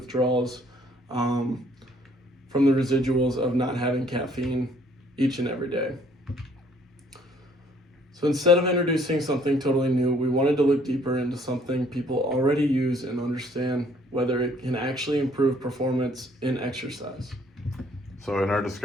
from the residuals of not having caffeine each and every day. So instead of introducing something totally new, we wanted to look deeper into something people already use and understand whether it can actually improve performance in exercise. So in our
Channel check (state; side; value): normal; both; correlation 0.62